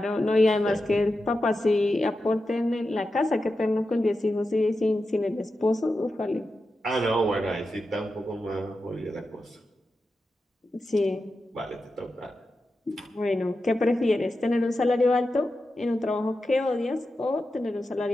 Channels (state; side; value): normal; both; correlation 0.90